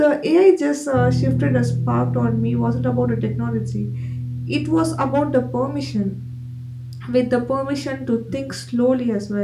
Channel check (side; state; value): both; identical; correlation 1.00